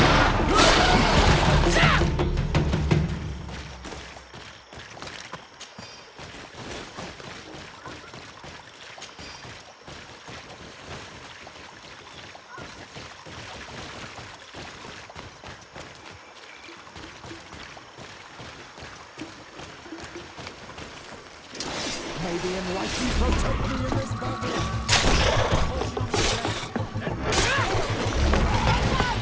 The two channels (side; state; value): both; identical; correlation 1.00